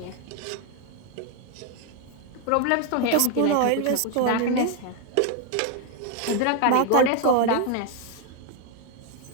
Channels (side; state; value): both; different; correlation 0.01